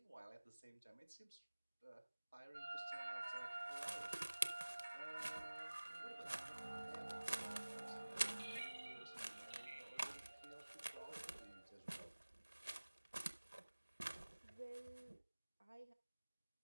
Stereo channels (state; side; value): inverted; both; correlation -1.00